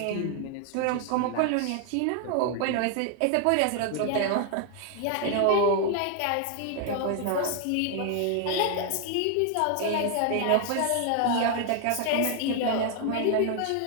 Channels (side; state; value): both; different; correlation 0.00